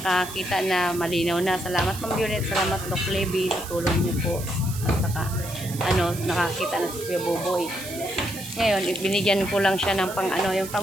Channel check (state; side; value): noise; right; hiss, 12 dB below the sound